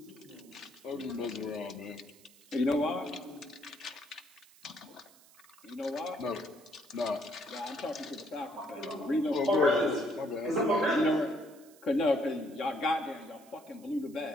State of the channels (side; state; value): right; noise; hiss, 25 dB below the sound